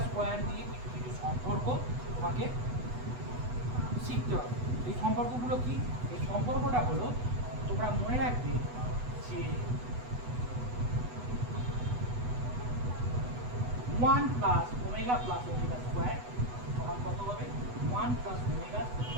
স্কোয়ার দিয়ে কিছু কিছু সম্পর্ক তোমাকে শিখতে হবে। এই সম্পর্কগুলো কি? এই সম্পর্কটা হলো তোমরা মনে রাখবে যে 1 plus omega plus omega square সমান কত হবে? 1 plus omega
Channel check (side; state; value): left; late; 8.1 ms